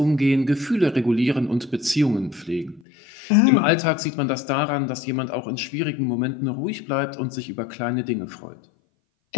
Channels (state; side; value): drops out; right; at 2.8 s